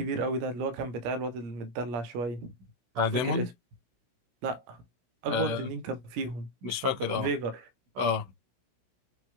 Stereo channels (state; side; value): late; left; 16 ms